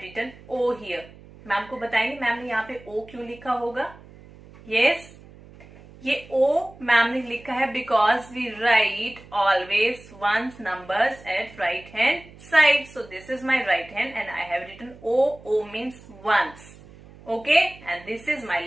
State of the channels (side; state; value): right; noise; hum, 21 dB below the sound